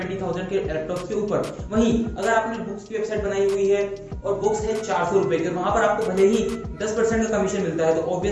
के लैपटॉप के ऊपर। वहीं अगर आपने बुक्स की वेबसाइट बनाई हुई है और बुक्स है 400 रुपए के, वहां पर आपको भले ही 10% का कमीशन मिलता है, तो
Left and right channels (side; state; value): both; identical; correlation 1.00